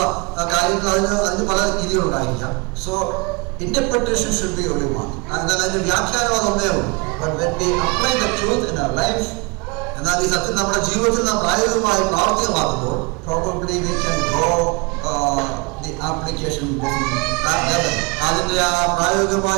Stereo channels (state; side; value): quieter; left; 28.5 dB